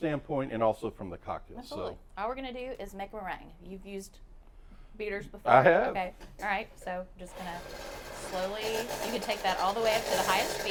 and also from the cocktails. Absolutely. So, all we're going to do is make a meringue. You've used beaters before? I have. Okay. All right. So just going to slowly, you can take that all the way up to the highest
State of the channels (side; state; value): both; identical; correlation 1.00